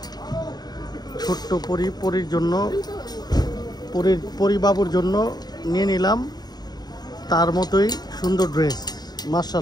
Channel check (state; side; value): late; right; 0.20 ms